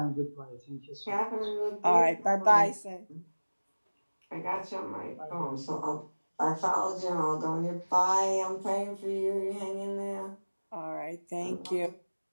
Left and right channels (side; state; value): both; inverted; correlation -1.00